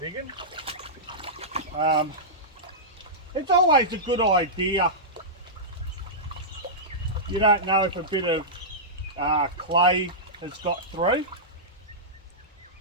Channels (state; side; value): normal; both; correlation -0.14